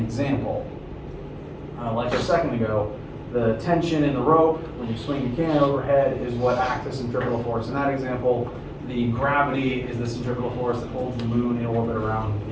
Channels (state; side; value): identical; both; correlation 1.00